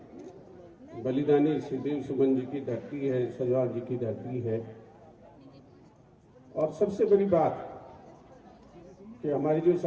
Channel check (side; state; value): both; identical; correlation 1.00